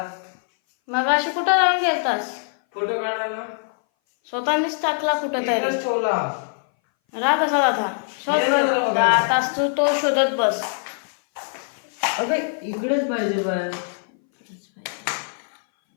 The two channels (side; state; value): right; silent; 60 dB below the other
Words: मग अशी कुठं जाऊन गेलतास? फोटो काढायला स्वतःनीच टाकला कुठं तरी. राग कसा था शोध आताच तो शोधत बस. इकडेच पाहिजे बाय.